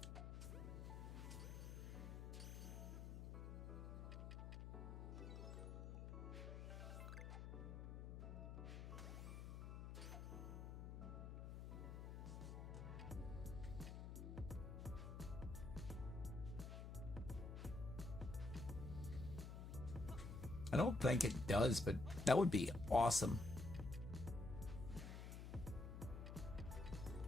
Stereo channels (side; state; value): left; noise; hum, 7 dB below the sound